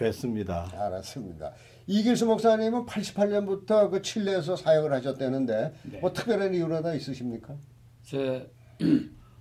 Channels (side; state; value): both; identical; correlation 1.00